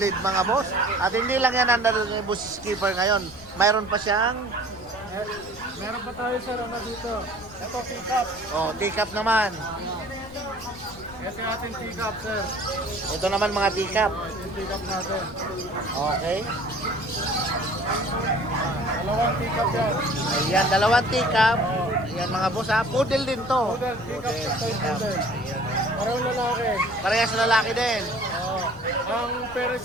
mga boss. At hindi lang yan ang dala ni Boss Skipper ngayon. Mayroon pa siyang Meron pa tayo sir, ano dito? Ito, pick-up. oh, teacup naman. Ito yung ating pick-up sir. Ito naman mga teacup. Ito yung pick-up natin. Okay. Dalawang pick-up yan. Ayan, dalawang teacup. Ayan mga boss, ha. Poodle din to. Poodle, pick-up sa toy poodle. Parang lalaki. Parehas lalaki din. Ang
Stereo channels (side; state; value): left; noise; rumble, 19 dB below the sound